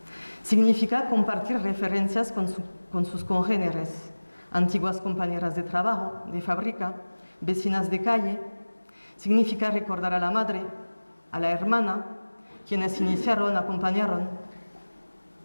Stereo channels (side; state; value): both; inverted; correlation -1.00